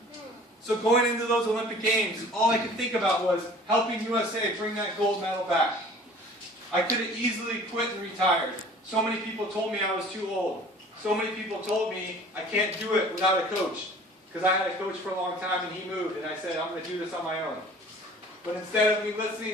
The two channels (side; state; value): both; normal; correlation 0.48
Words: So going into those Olympic Games, all I could think about was helping USA bring that gold medal back. I could have easily quit and retired. So many people told me I was too old. So many people told me I can't do it without a coach. Because I had a coach for a long time and he moved, and I said, I'm going to do this on my own. But instead of me